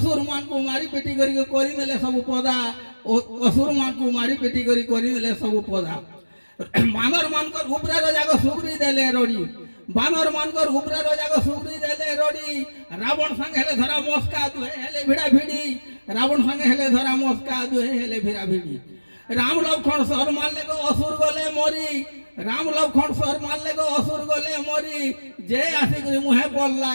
मान को मारी पेटी करी देले सब पदा असुर मान को मारी पेटी करी देले सब पदा बानर मानकर उपरे रजाको सुग्री देले रोडी बानर मानकर उपरे रजाको सुग्री देले रोडी रावण संग हेले धरा मस्का दुहे हेले भिड़ा भिड़ी रावण संग हेले धरा मस्का दुहे हेले भिड़ा भिड़ी राम लक्ष्मण सर मारले को असुर गले मरी राम लक्ष्मण सर मारले को असुर गले मरी जे आसी करी मुहे पल्ला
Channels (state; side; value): inverted; both; correlation -1.00